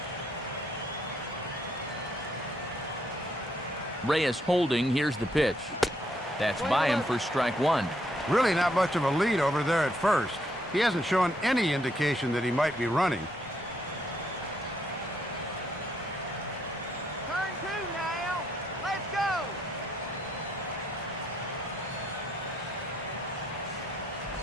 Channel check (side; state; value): both; normal; correlation 0.73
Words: Reyes holding. Here's the pitch. That's by him for strike 1. Really not much of a lead over there at first. He hasn't shown any indication that he might be running. Turn 2 now. Let's go.